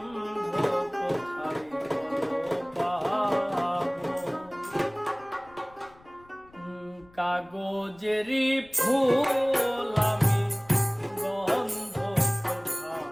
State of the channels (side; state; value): left; noise; rumble, 27 dB below the sound